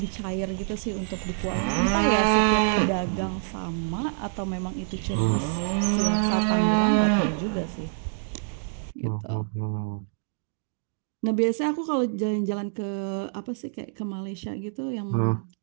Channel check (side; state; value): left; silent; digital silence